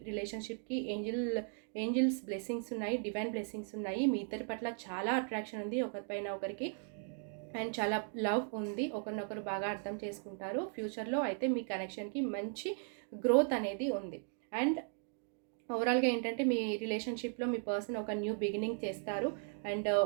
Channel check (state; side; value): silent; left; 53 dB below the other